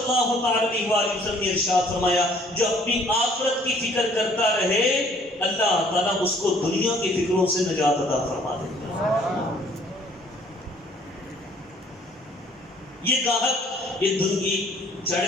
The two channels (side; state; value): both; normal; correlation 0.59